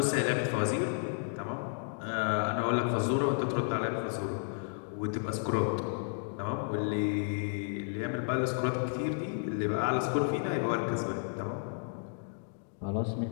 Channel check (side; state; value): right; silent; digital silence